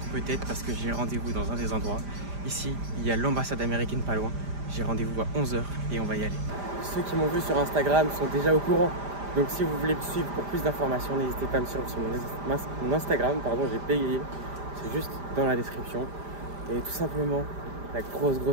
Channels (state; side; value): late; left; 5.0 ms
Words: peut-être parce que j'ai rendez-vous dans un des endroits. Ici, il y a l'ambassade américaine pas loin, j'ai rendez-vous à 11 h et on va y aller. Ceux qui m'ont vu sur Instagram sont déjà au courant. Donc si vous voulez me suivre pour plus d'informations, n'hésitez pas à me suivre sur mon Instagram, pardon, j'ai payé, c'est juste dans la description. Et tout simplement, la